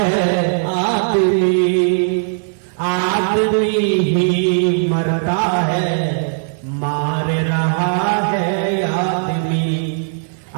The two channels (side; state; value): left; silent; digital silence